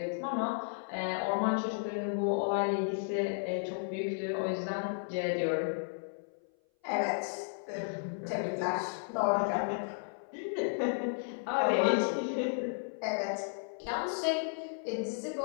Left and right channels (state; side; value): silent; right; 55 dB below the other